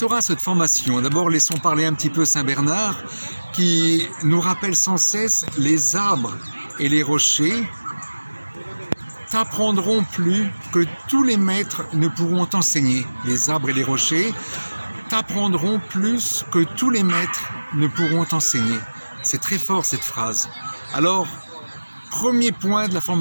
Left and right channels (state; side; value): inverted; both; correlation -1.00